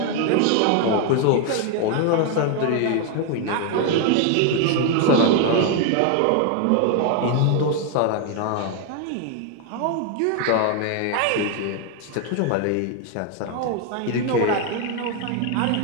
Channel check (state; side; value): different; both; correlation 0.01